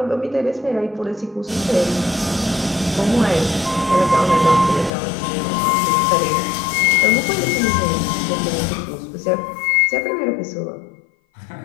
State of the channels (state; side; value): drops out; right; at 4.9 s